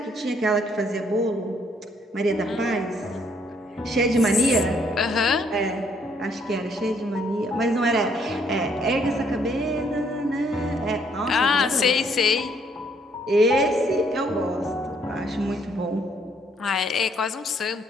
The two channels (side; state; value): both; normal; correlation 0.67